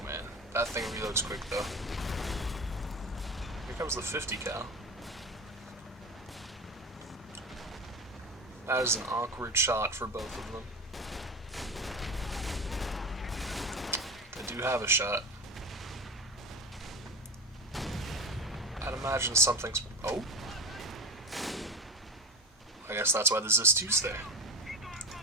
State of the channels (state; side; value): normal; both; correlation 0.26